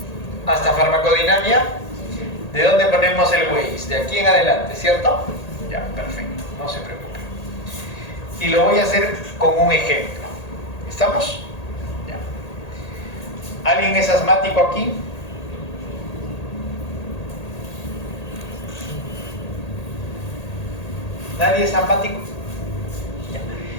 ¿Hasta farmacodinámica? ¿De dónde ponemos el Waze? De aquí en adelante, ¿cierto? Ya, perfecto, no se preocupe. Y lo voy a hacer con un ejemplo. ¿Estamos? ¿Alguien es asmático aquí? ¿Nadie es asmático? Ya.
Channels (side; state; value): right; late; 1.8 ms